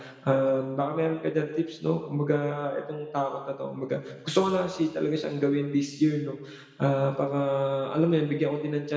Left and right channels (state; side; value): identical; both; correlation 1.00